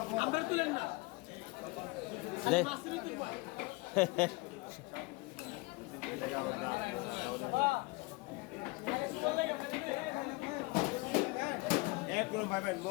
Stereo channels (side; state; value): right; quieter; 24.4 dB